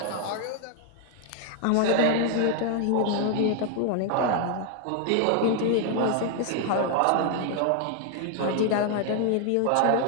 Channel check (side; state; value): both; different; correlation 0.00